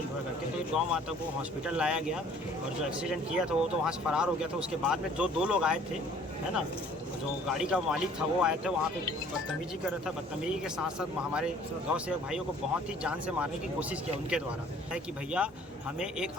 हुआ करके। तो गौ माता को हॉस्पिटल लाया गया और जो एक्सीडेंट किया था वो तो वहाँ से फरार हो गया था। उसके बाद में जो 2 लोग आए थे, है ना, जो गाड़ी का मालिक था वो आए थे, वहाँ पे बदतमीजी कर रहा था। बदतमीजी के साथ साथ हमारे गाँव से भाइयों को बहुत ही जान से मारने की कोशिश किया उनके द्वारा। है कि भैया हमें एक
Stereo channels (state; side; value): normal; both; correlation 0.54